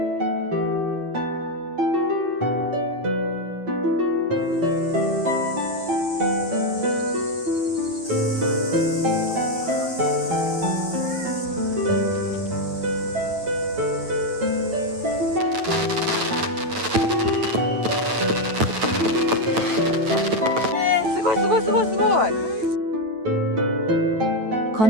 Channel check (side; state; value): left; late; 9.2 ms